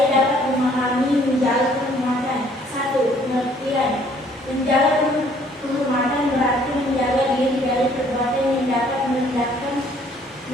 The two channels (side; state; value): both; normal; correlation 0.61